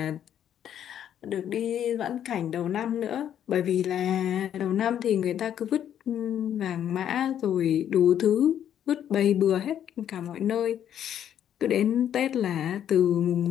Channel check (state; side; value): quieter; right; 10.0 dB